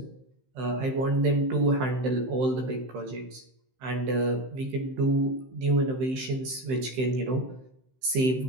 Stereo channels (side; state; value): left; late; 15 ms